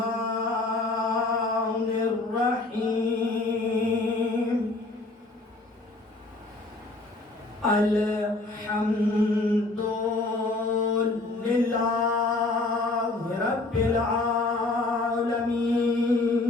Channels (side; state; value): right; quieter; 3.1 dB